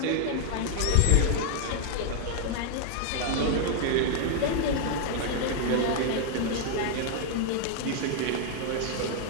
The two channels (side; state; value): both; different; correlation 0.00